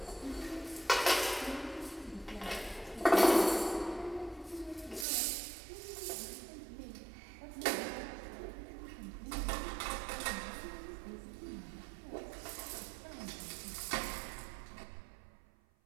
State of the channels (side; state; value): left; drops out; at 5.1 s